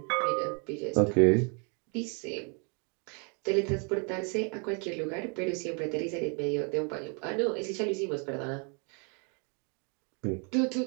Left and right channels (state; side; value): quieter; left; 37.1 dB